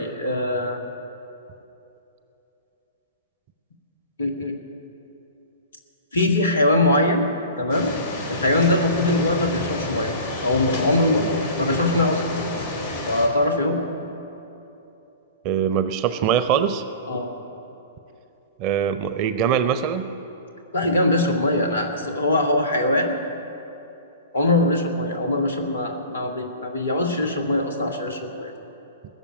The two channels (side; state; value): both; inverted; correlation -0.39